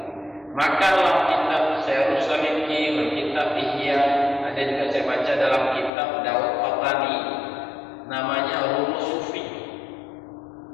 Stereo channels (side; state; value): right; drops out; at 5.9 s